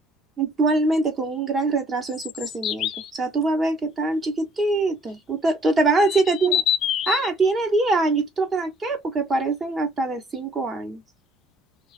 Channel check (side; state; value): both; normal; correlation 0.60